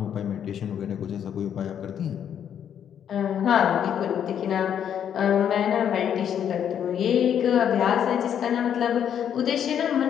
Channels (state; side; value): quieter; right; 9.0 dB